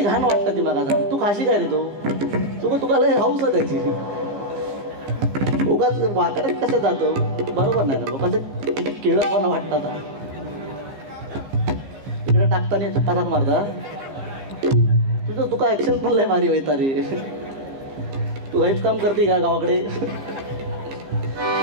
घाण वाटतं ती मला सांग. तू खाशी काय रे तो तुका लय हाऊस आहे त्याची. उगाच वाकड्यात कसं जातो बरोबर नाही ना. लोकांचं केळतपणा वाटतात. इकडे टाकताना पदार्थ मारता तुझं तुका ऍक्शन पण लय भारी व्हायचा रे. तू हेच काम करते का गावाकडे.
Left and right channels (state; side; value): late; left; 15 ms